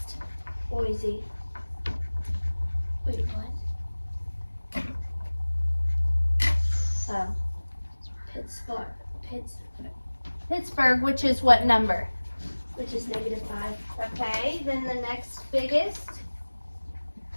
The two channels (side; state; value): both; inverted; correlation -1.00